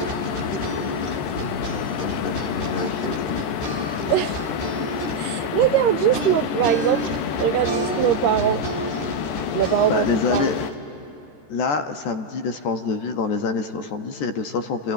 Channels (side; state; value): right; late; 14 ms